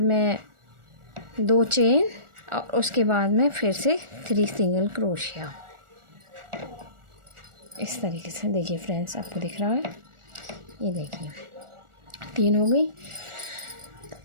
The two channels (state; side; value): late; left; 1.4 ms